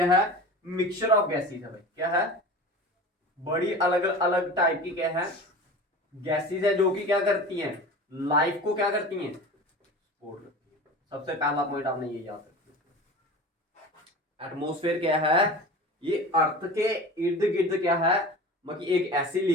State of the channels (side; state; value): both; normal; correlation 0.35